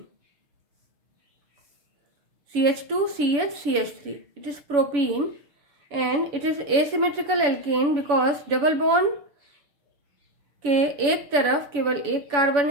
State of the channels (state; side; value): late; left; 7.0 ms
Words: CH2, CH, CH3, it is propene and it is asymmetrical alkane because double bond के एक तरफ केवल एक carbon